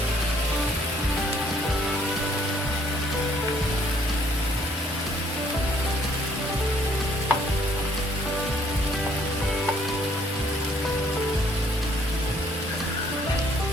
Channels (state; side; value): normal; both; correlation 0.63